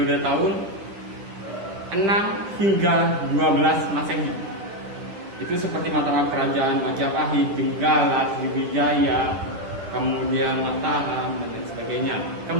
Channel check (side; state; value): left; late; 9.8 ms